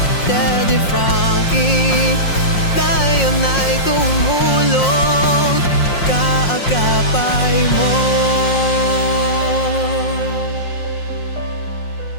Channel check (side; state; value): right; late; 5.6 ms